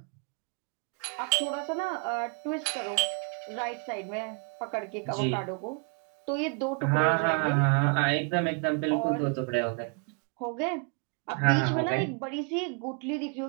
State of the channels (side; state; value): left; quieter; 35.8 dB